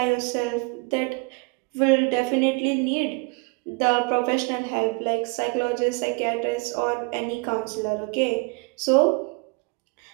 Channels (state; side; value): quieter; left; 30.0 dB